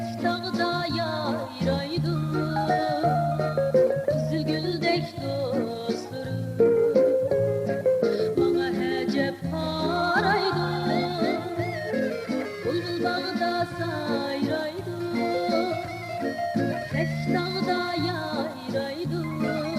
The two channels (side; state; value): both; identical; correlation 1.00